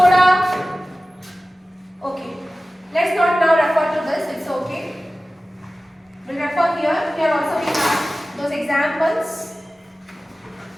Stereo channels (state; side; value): normal; both; correlation 0.96